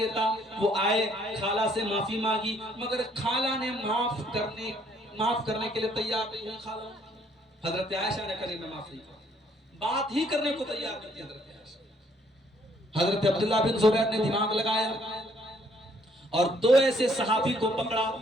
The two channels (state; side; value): normal; both; correlation 0.65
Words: تھا۔ وہ آئے، خالہ سے معافی مانگی، مگر خالہ نے معاف کرنے کے لیے تیار نہیں ہوئی۔ خالہ حضرت عائشہ نے کہا میں معاف نہیں کروں، بات ہی کرنے کو تیار نہیں تھی حضرت عائشہ۔ حضرت عبداللہ بن زبیر نے دماغ لگایا اور دو ایسے صحابی کو پکڑا